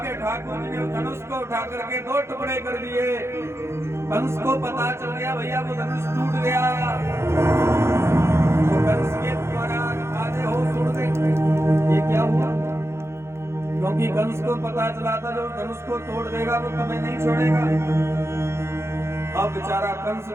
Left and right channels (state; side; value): late; left; 0.13 ms